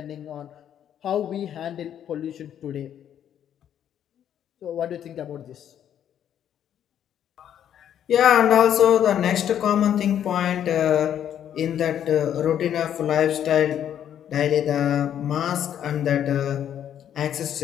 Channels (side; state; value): right; quieter; 9.9 dB